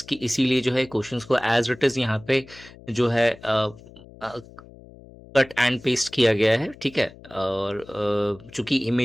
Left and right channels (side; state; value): left; noise; hum, 21 dB below the sound